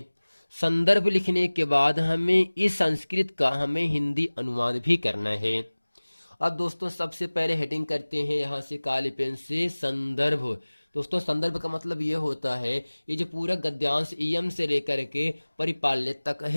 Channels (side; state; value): both; inverted; correlation -1.00